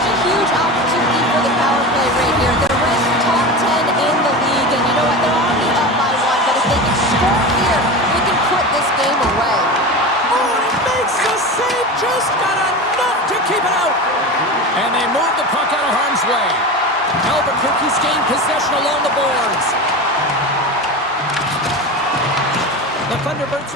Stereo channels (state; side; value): normal; both; correlation 0.27